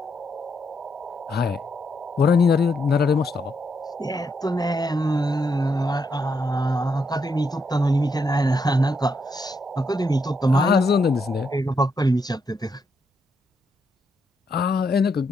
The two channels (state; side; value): normal; both; correlation 0.79